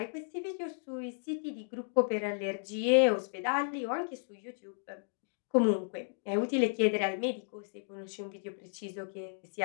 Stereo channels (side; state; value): right; silent; digital silence